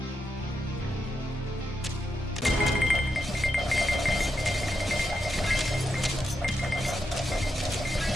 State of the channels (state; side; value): normal; both; correlation 0.84